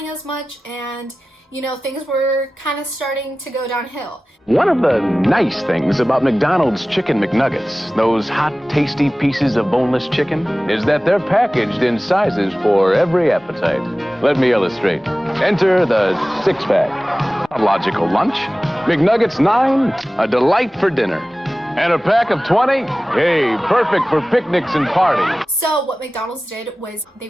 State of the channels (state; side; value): normal; both; correlation 0.97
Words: as much, and you know, things were kind of starting to go downhill. One of the nice things about McDonald's Chicken McNuggets, those hot, tasty pieces of boneless chicken, is that they're packaged in sizes for every appetite. Let me illustrate. Enter the six-pack. A logical lunch. McNuggets 9, a delight for dinner. And a pack of 20? Hey, perfect for picnics and parties. So what McDonald's did was they